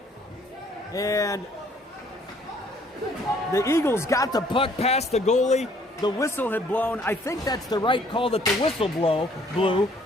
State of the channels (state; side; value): normal; both; correlation 0.61